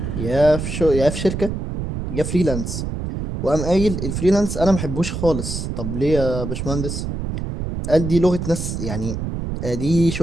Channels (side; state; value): right; noise; rumble, 4 dB below the sound